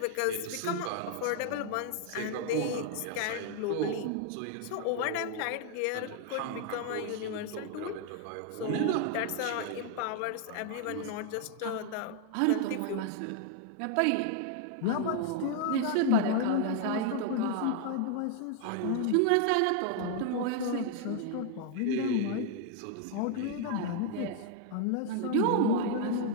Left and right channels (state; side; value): different; both; correlation 0.00